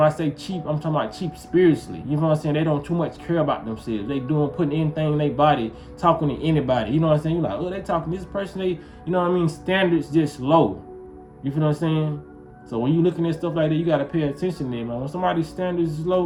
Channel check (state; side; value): identical; both; correlation 1.00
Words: I say cheap, I'm talking about cheap spiritually. You know what I'm saying? They don't too much care about themselves. They putting anything in their body, talking to anybody. You know what I'm saying? You're like, oh, they talking to this person. They, you know what I mean? Standards just low. You feel what I'm saying? So when you looking at stuff like that, you got to pay attention to them, man. When somebody's standards is